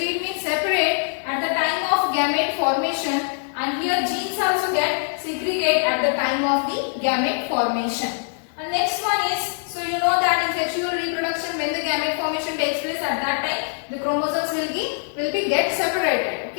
means separate at the time of gamete formation, and here genes also get segregate at the time of the gamete formation. And next one is, so you know that in sexual reproduction when the gamete formation takes place, at that time the chromosomes will be get separated.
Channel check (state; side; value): silent; right; 63 dB below the other